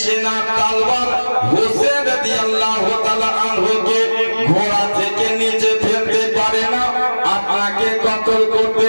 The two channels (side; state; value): both; inverted; correlation -1.00